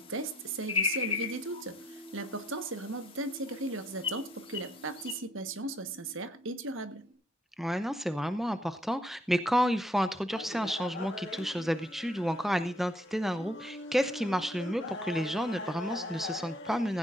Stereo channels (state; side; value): normal; both; correlation 0.65